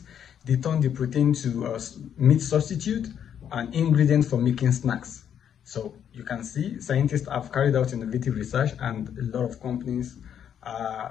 They turn the protein to meat substitute and ingredient for making snacks. So you can see scientists have carried out innovative research, and a lot of companies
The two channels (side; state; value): right; quieter; 8.9 dB